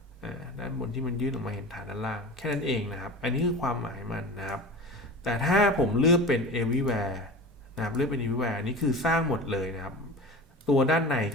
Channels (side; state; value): both; normal; correlation 0.33